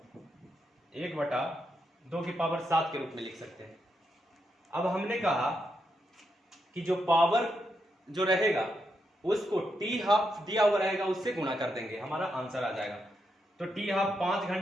1/2 की पावर 7 के रूप में लिख सकते हैं। अब हमने कहा कि जो पावर जो रहेगा उसको टी हाफ दिया हुआ रहेगा उससे गुणा कर देंगे, हमारा आंसर आ जाएगा। तो टी हाफ 5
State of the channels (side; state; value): both; normal; correlation 0.82